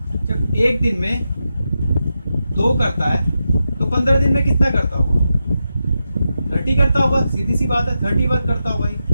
जब एक दिन में 2 करता है तो 15 दिन में कितना करता होगा, 30 करता होगा। सीधी सी बात है, 30 वर्क करता होगा ही,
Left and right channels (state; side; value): inverted; both; correlation -0.88